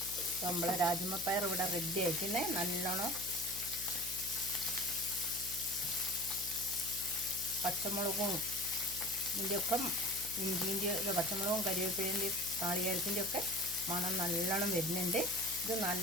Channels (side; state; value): left; noise; hum, 16 dB below the sound